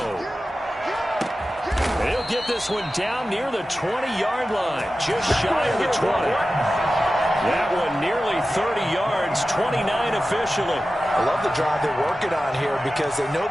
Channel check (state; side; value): normal; both; correlation 0.94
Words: He'll get this one down near the 20-yard line, just shy of the 20. That one nearly 30 yards, 29 officially. I love the drive they're working on here because they know